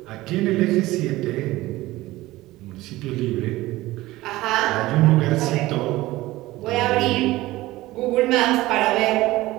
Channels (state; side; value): quieter; left; 18.1 dB